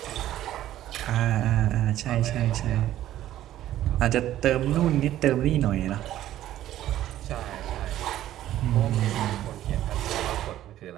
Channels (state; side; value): quieter; left; 13.1 dB